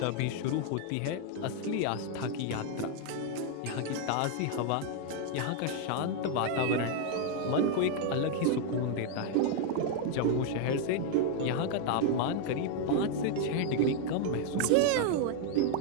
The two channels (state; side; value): different; both; correlation 0.00